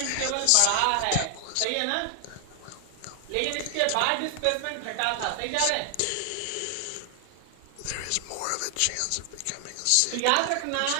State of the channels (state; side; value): different; both; correlation 0.00